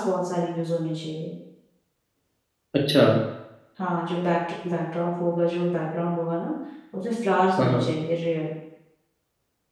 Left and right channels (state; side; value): identical; both; correlation 1.00